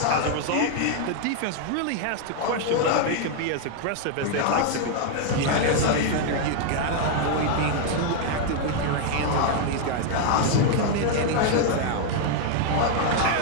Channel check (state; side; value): different; both; correlation 0.00